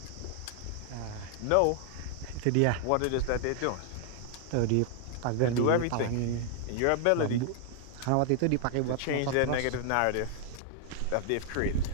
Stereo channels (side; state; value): both; different; correlation 0.00